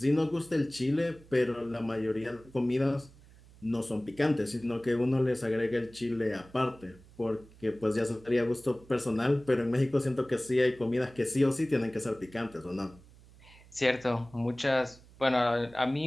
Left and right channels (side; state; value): right; noise; hum, 24 dB below the sound